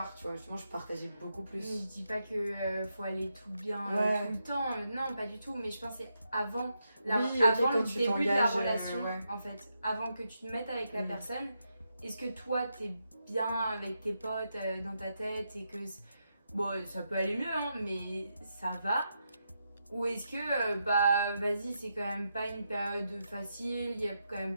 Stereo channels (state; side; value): inverted; both; correlation -0.84